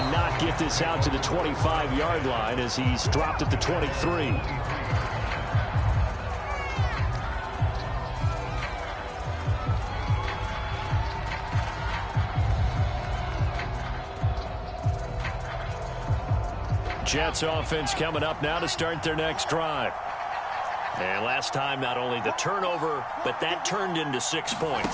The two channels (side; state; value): both; identical; correlation 1.00